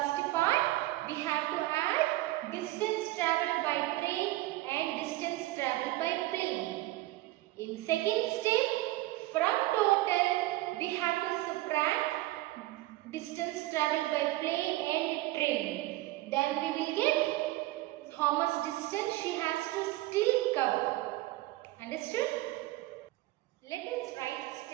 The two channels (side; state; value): left; quieter; 18.0 dB